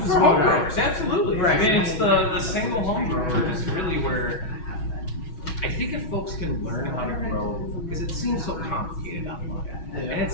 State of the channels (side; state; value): right; late; 6.2 ms